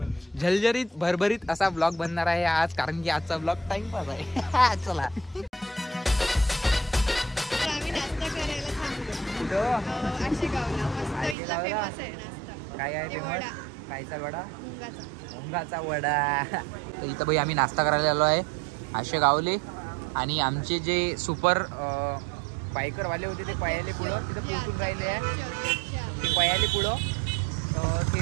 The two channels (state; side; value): drops out; left; at 11.4 s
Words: झलझरीत भरभरीत असा ब्लॉग बनणार आहे आज, कारण की आजचा ब्लॉग टाइमपास आहे. चला काय आहे फेमस? कायचा वडा? मुंगाचा वडा. तर इथं भाई आम्ही नाश्ता करायला आलो आहे आशेगावले. आणि आमचे जे सुपर बायकरवाले होते ते पयाले पुढं तिथं पोहोचून राहिले आहे. ते पयाले पुढं